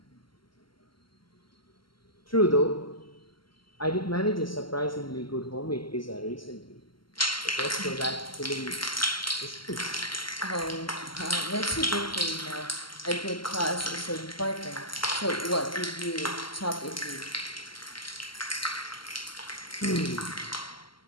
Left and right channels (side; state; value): right; late; 0.73 ms